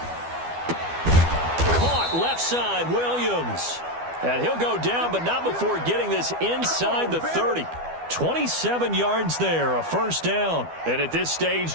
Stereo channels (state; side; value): late; left; 12 ms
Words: Caught left side, Williams. And he'll go down, but not before getting this inside the 30. 27 yards there, a 1st down. And at this stage,